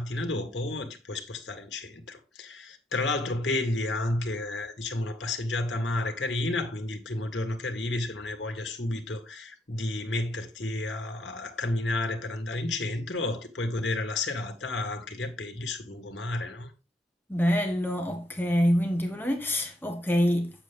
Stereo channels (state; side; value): normal; both; correlation 0.75